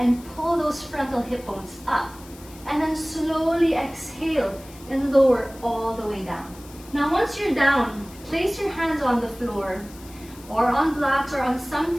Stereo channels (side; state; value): left; noise; hiss, 21 dB below the sound